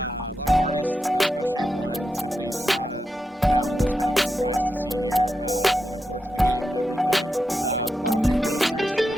lot of artists, especially one, Symphony Sonata. That one was kind of a surprise to see here. Looking forward to the game and everything. Bought a few posters,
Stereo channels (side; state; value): both; normal; correlation 0.87